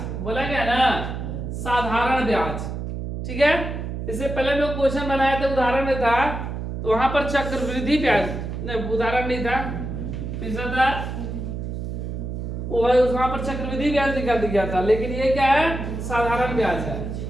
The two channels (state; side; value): noise; right; hum, 5 dB below the sound